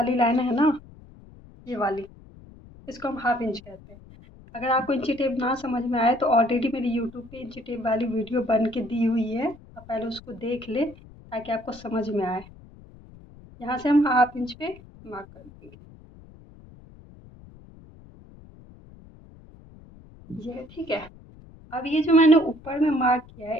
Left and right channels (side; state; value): left; noise; rumble, 21 dB below the sound